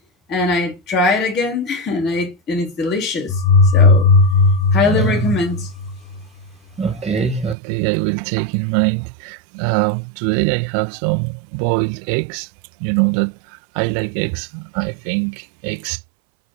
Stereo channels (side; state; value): left; drops out; at 7.6 s